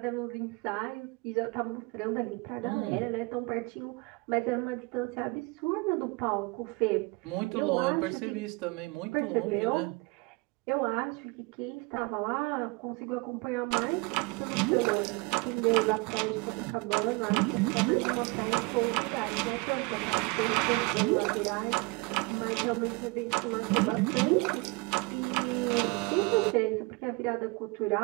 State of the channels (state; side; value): quieter; left; 27.1 dB